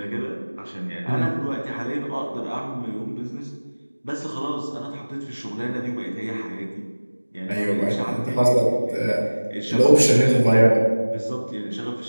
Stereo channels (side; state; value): both; inverted; correlation -1.00